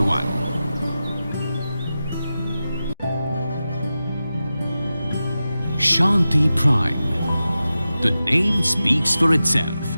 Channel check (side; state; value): both; inverted; correlation -0.93